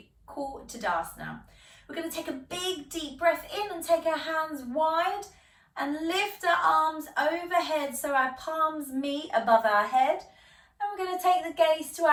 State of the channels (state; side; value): identical; both; correlation 1.00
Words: call Tadasana. We're going to take a big deep breath in and take our hands wide and lift our arms overhead so our palms meet above our head. And we're going to take the gaze to